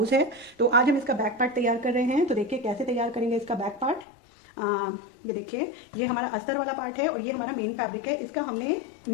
है। तो आज हम इसका बैक पार्ट तैयार कर रहे हैं। तो देखिए कैसे तैयार करेंगे इसका बैक पार्ट। ये देखिए, ये हमारा अस्तर वाला पार्ट है और ये हमारा मेन फैब्रिक है। इसका हमने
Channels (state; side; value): drops out; right; at 4.0 s